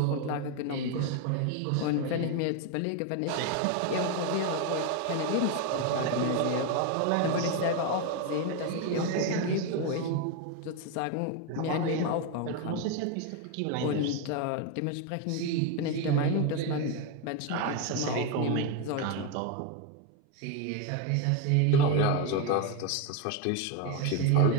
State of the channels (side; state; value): both; different; correlation 0.02